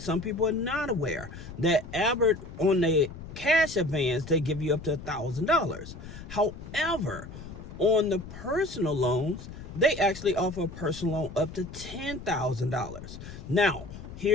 people are not aware that Albert, on the cash advance, they give you up to $1,000. However, on the personal loans, they actually offer a personal loan up to $10,000. Now,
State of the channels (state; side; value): noise; left; rumble, 13 dB below the sound